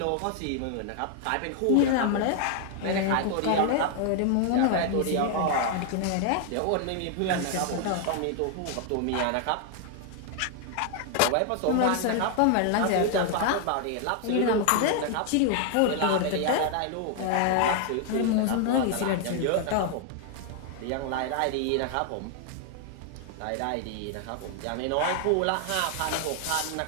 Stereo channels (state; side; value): different; both; correlation 0.00